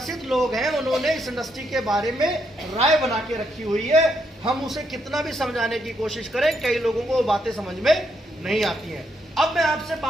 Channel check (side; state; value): both; normal; correlation 0.77